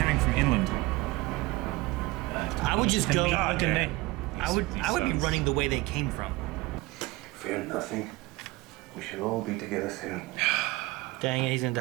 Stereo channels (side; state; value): left; quieter; 20.4 dB